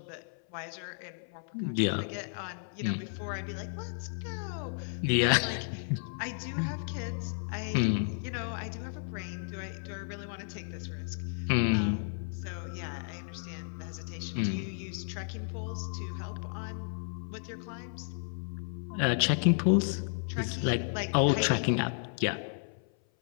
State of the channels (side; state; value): right; silent; 56 dB below the other